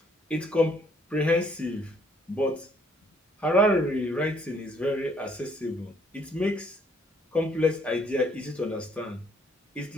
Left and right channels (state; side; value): normal; both; correlation 0.65